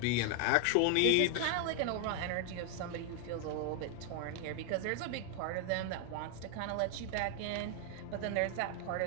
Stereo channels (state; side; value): different; both; correlation 0.00